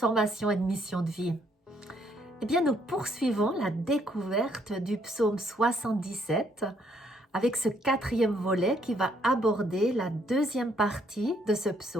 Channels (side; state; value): both; normal; correlation 0.69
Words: et de mission de vie. Eh bien, nous poursuivons la découverte du psaume 77 avec ce quatrième volet qui va aborder la deuxième partie de ce